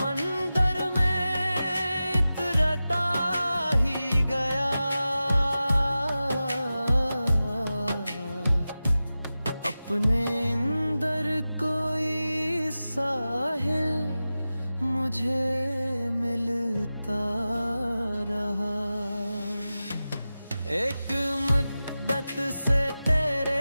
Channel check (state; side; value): inverted; both; correlation -0.95